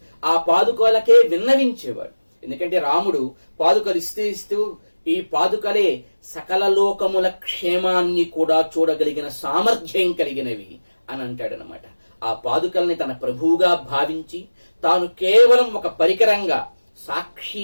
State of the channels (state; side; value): inverted; both; correlation -1.00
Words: ఆ పాదుకలకే విన్నవించేవాడు. ఎందుకంటే రాముడు పాదుకలు ఇస్తూ ఈ పాదుకలే సకల లోకముల క్షేమాన్ని కూడా చూడగలిగిన సామర్థ్యం కలిగినవి అని అంటాడనమాట. ఆ పాదుకల్ని తన ప్రభువుగా భావించి తాను కేవలం ఒక పరికరంగా,